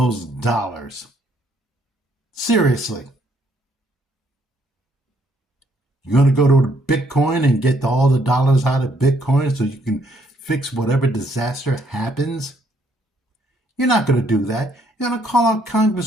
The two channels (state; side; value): normal; both; correlation 0.69